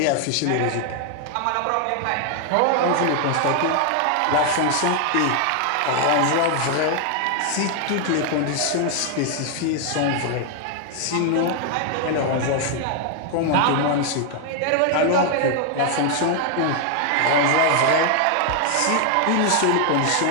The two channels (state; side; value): different; both; correlation 0.00